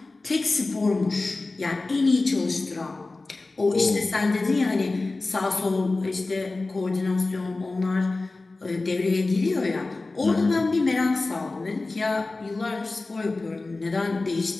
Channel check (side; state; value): right; quieter; 3.3 dB